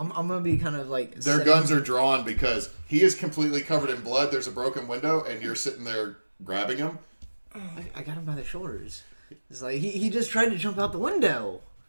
going to be kind of like... Their guns are drawn because he is completely covered in blood. There's a broken window, and you're sitting there grabbing him. I got him by the shoulders. It's like, he just tried to jump out the window.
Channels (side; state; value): both; inverted; correlation -1.00